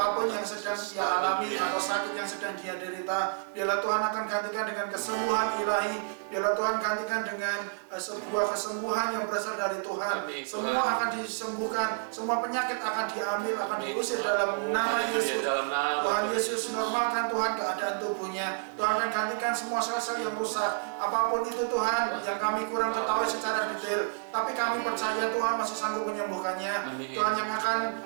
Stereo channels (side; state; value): left; silent; digital silence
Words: yang sedang dia alami atau sakit yang sedang dia derita. Biarlah Tuhan akan gantikan dengan kesembuhan ilahi. Biarlah Tuhan gantikan dengan sebuah kesembuhan yang berasal dari Tuhan. Amin, Semua Tuhan. akan disembuhkan, semua penyakit akan diambil, akan Amin, diusir Tuhan. dalam nama Haleluya, Yesus. dalam nama Tuhan Tuhan. Yesus normalkan Tuhan keadaan tubuhnya. Tuhan akan gantikan semua sel-sel yang rusak. Apapun itu Tuhan yang kami kurang ketahui secara detail, tapi kami percaya Tuhan masih sanggup menyembuhkannya. Amin. Tuhan yang akan